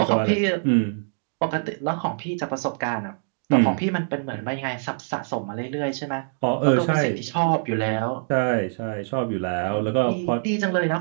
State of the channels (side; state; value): left; silent; digital silence